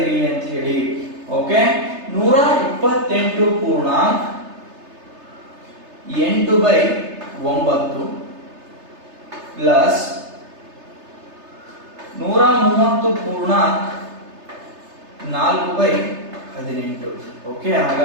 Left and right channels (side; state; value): left; late; 3.3 ms